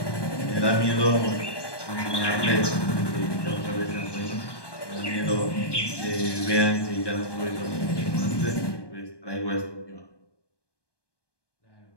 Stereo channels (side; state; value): right; late; 1.2 ms